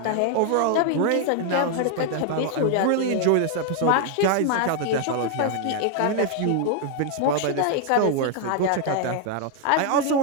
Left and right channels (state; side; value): different; both; correlation 0.00